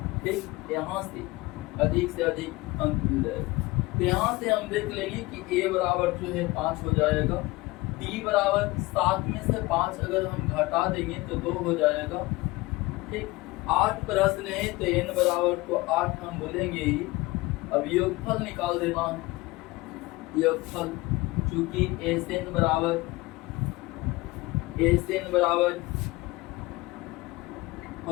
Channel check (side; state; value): right; quieter; 21.2 dB